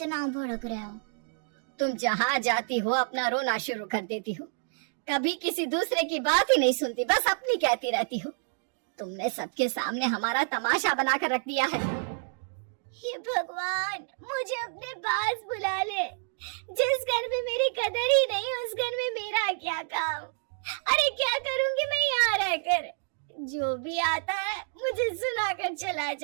भड़क रहे हो? तुम जहाँ जाती हो अपना रोना शुरू कर देती हो, कभी किसी दूसरे की बात ही नहीं सुनती, बस अपनी कहती रहती हो। तुमने सबके सामने हमारा तमाशा बनाकर रख दिया है। हे भगवान, मुझे अपने पास बुला ले। जिस घर में मेरी कदर ही नहीं, उस घर में मेरा क्या काम? अरे क्या करूंगी मैं यहाँ रहकर? जो भी आता है मुझे सुनाकर चला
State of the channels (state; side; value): silent; left; digital silence